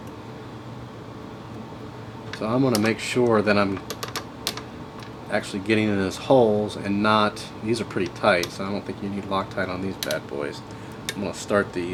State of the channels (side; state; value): both; identical; correlation 1.00